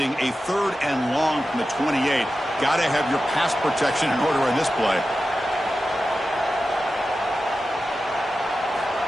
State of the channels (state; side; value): normal; both; correlation 0.93